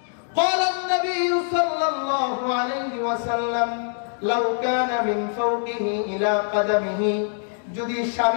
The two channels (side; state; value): right; silent; 63 dB below the other